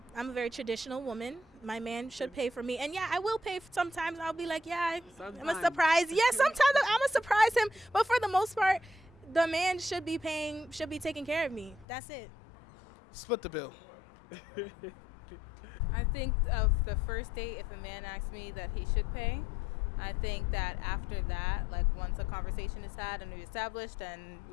I'm a very traditional woman. My man should pay for me, and yeah, I will pay. Sometimes I'll be like, yeah, I'm a surprise. Yeah, sometimes I'm gonna surprise him, but for the most part, the man should be paying, should be taking care of me. That's it. Split the bill. I think of the first date, if a man asks me that he should pay, I think that after that, like once a conversation is had and we established, then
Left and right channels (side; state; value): right; drops out; at 11.9 s